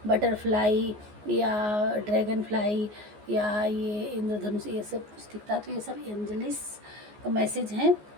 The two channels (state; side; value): late; left; 14 ms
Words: बटरफ्लाई या ड्रैगन फ्लाई या ये इंद्रधनुष ये सब कुछ दिखता है, तो ये सब एंजलिस का मैसेज हैं।